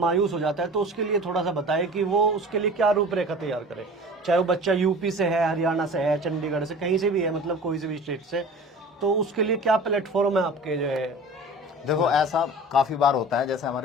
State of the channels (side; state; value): both; normal; correlation 0.40